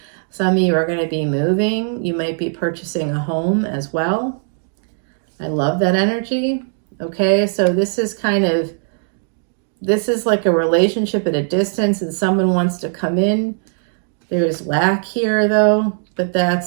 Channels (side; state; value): left; silent; digital silence